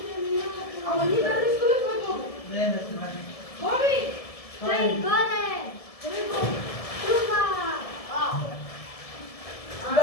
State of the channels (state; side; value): late; right; 1.7 ms